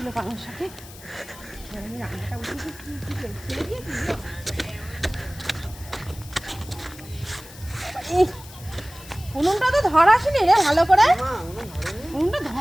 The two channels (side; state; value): left; noise; hiss, 18 dB below the sound